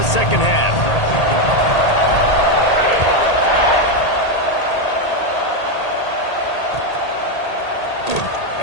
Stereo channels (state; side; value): late; right; 1.8 ms